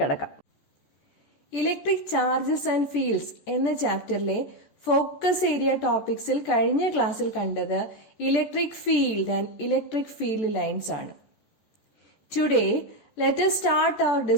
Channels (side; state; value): right; late; 14 ms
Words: കടക്കാം. ഇലക്ട്രിക് ചാർജസ് ആൻഡ് ഫീൽഡ്സ് എന്ന ചാപ്റ്ററിലെ ഫോക്കസ് ഏരിയ ടോപ്പിക്സിൽ കഴിഞ്ഞ ക്ലാസ്സിൽ കണ്ടത് electric field and electric field lines ആണ്. Today let us start our